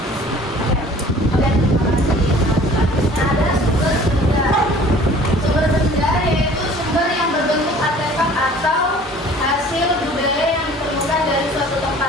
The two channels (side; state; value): both; normal; correlation 0.49